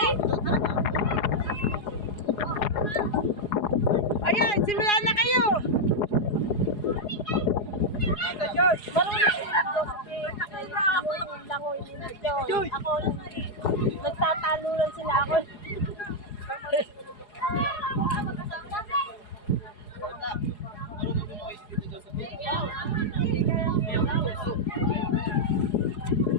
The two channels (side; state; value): right; late; 4.8 ms